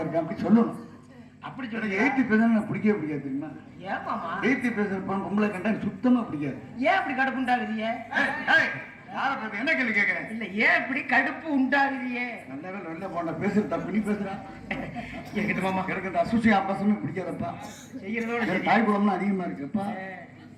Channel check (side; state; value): both; identical; correlation 1.00